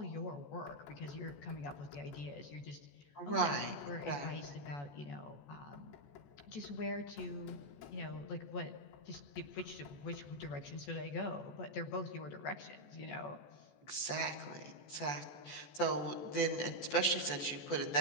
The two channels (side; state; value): right; late; 14 ms